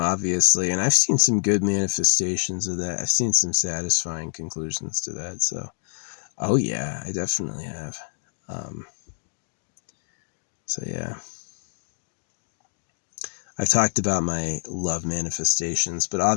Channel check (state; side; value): silent; right; digital silence